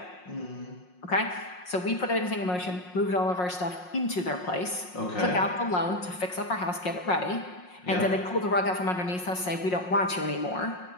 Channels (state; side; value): late; right; 5.5 ms